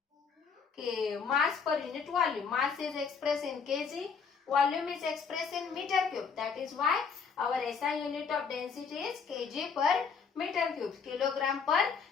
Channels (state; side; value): quieter; right; 5.8 dB